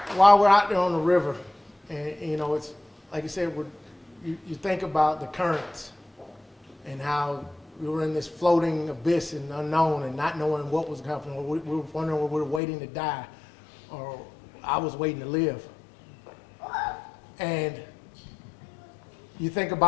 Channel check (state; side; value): drops out; right; at 12.6 s